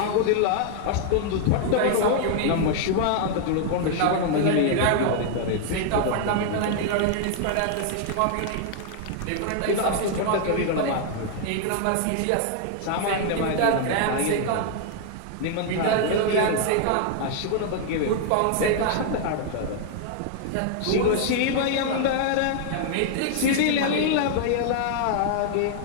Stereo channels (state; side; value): different; both; correlation 0.00